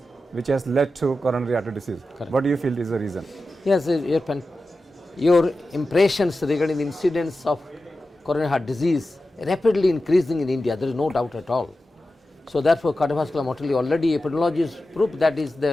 which has led to coronary artery disease. Correct. What do you feel is the reason? Yes, your impressions regarding the incidence of coronary heart disease rapidly increasing in India, there is no doubt at all. So therefore, cardiovascular mortality already epidemiologists prove that is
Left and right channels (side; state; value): both; normal; correlation 0.93